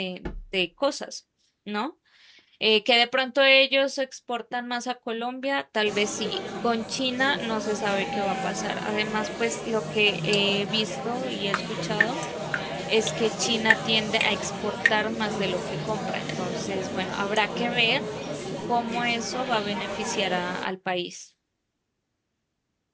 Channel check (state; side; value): identical; both; correlation 1.00